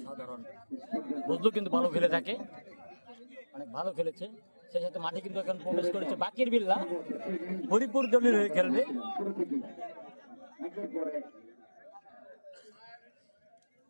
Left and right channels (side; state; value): both; inverted; correlation -1.00